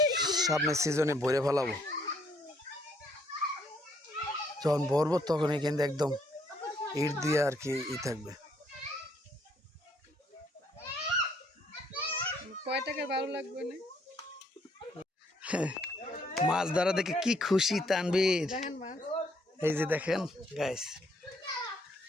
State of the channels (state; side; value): normal; both; correlation 0.68